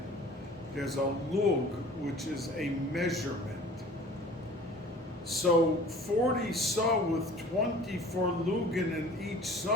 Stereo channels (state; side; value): normal; both; correlation 0.46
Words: There's a lug, which is a measurement. So 40 saw with 24 lugin in each